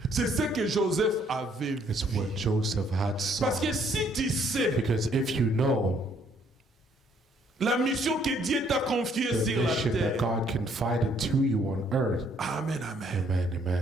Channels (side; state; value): both; normal; correlation 0.66